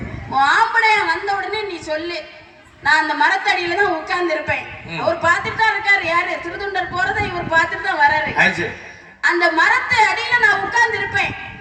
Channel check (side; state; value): both; identical; correlation 1.00